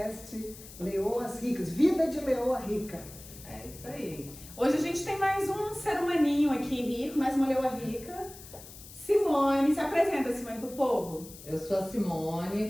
Leoas Ricas, Vida de Leoa Rica. É isso aí. Hoje a gente tem mais um ser humaninho aqui rico, mais uma leoa rica. Simone, se apresenta, Simone, pro povo. Eu sou a Simone,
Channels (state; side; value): noise; left; hiss, 17 dB below the sound